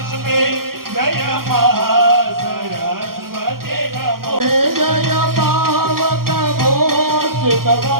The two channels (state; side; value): late; left; 0.92 ms